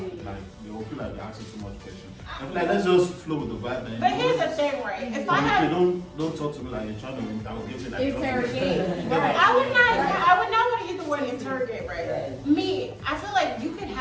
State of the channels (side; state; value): both; identical; correlation 1.00